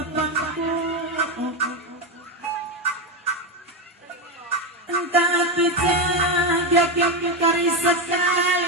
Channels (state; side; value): normal; both; correlation 0.11